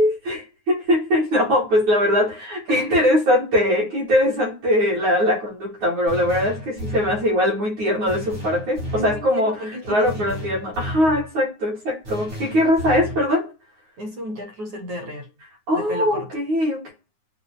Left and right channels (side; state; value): left; late; 9.5 ms